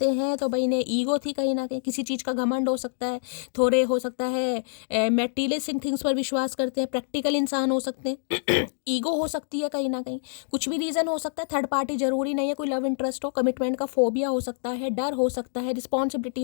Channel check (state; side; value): silent; right; 60 dB below the other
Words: हैं। तो भाई इन्हें ईगो थी कहीं ना कहीं, किसी चीज़ का घमंड हो सकता है, थोड़े हो सकता है मेटीरियलिस्टिक थिंग्स पर विश्वास करते हैं, प्रैक्टिकल इंसान हो सकते हैं। ईगो हो सकती है कहीं ना कहीं, कुछ भी रीज़न हो सकता है। थर्ड पार्टी जरूरी नहीं है कोई लव इंटरेस्ट हो, कमिटमेंट का फोबिया हो सकता है, डर हो सकता है, रिस्पॉन्सिबिलिटी